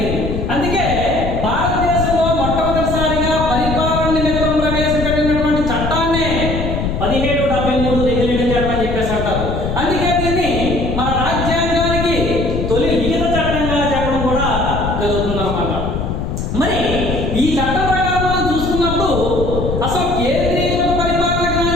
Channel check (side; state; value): left; noise; rumble, 3 dB below the sound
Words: అందుకే భారతదేశంలో మొట్టమొదటిసారిగా పరిపాలన నిమిత్తం ప్రవేశపెట్టినటువంటి చట్టాన్నే 1773 రెగ్యులేటింగ్ చట్టం అని చెప్పేసి అంటారు. అందుకే దీన్ని మన రాజ్యాంగానికి తొలి లిఖిత చట్టంగా చెప్పడం కూడా జరుగుతుందన్నమాట. మరి ఈ చట్టం ప్రకారం మనం చూసుకున్నప్పుడు అసలు కేంద్రీకృత పరిపాలనకు